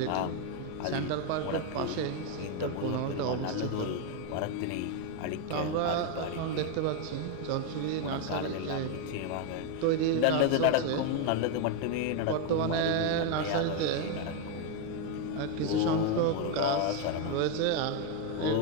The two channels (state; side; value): different; both; correlation 0.01